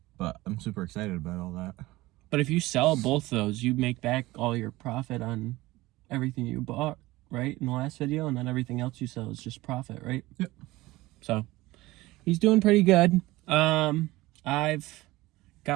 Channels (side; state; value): left; quieter; 19.1 dB